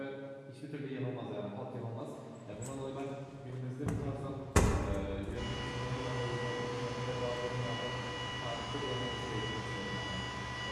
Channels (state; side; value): identical; both; correlation 1.00